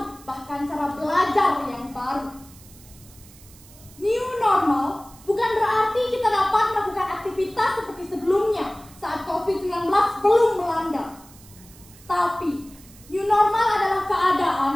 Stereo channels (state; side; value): noise; right; hiss, 23 dB below the sound